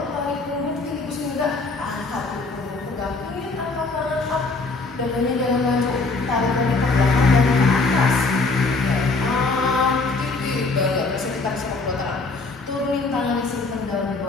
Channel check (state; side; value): quieter; right; 3.7 dB